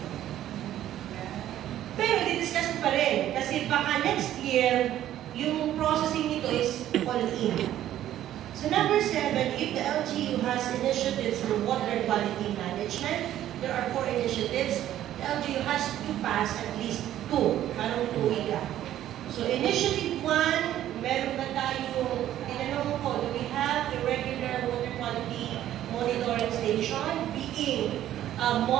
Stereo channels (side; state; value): left; quieter; 12.3 dB